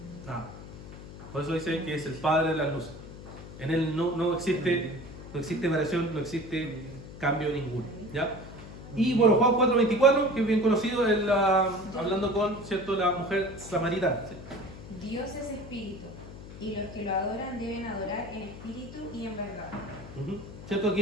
Nada. Por eso dice que es el Padre de las luces. En Él no existe variación, no existe cambio ninguno, ¿ya? Y bueno, Juan 4:24, que es bien conocido, hablando con, ¿cierto?, la mujer samaritana. ¿Sí? Dios es espíritu, y los que lo adoran deben adorar en espíritu y en verdad. ¿Cierto? Aquí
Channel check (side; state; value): left; noise; hum, 14 dB below the sound